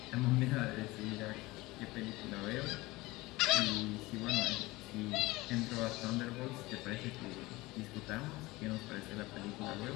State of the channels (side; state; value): right; quieter; 20.8 dB